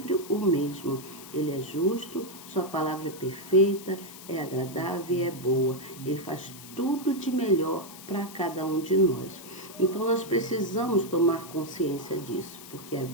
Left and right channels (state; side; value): noise; left; hiss, 16 dB below the sound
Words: o mesmo. Ele é justo, sua palavra é perfeita, é agradável e é boa. Ele faz tudo de melhor para cada um de nós. Então nós precisamos tomar consciência disso, porque a